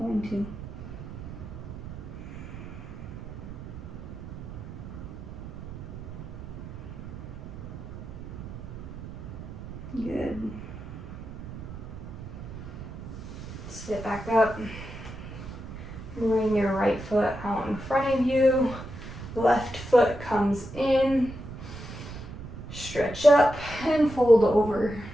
to. Good. Sit back up. Bring your right foot out in front of you. Left foot comes in. Stretch up and fold over.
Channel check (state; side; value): noise; right; rumble, 11 dB below the sound